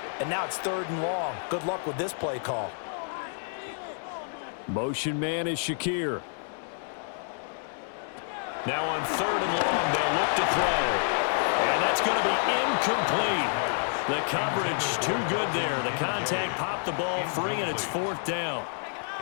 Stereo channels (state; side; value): silent; right; 59 dB below the other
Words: and now it's 3rd and long. Good luck with this play call. Motion man is Shakir. Now on 3rd and long, they'll look to throw. And that's going to be incomplete. The coverage too good there. The contact popped the ball free, and it's 4th down.